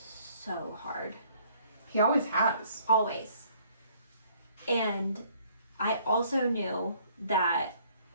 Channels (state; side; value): inverted; both; correlation -0.61